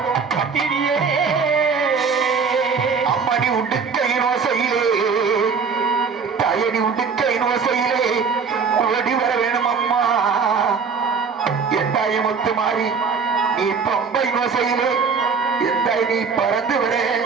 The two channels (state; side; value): quieter; left; 5.5 dB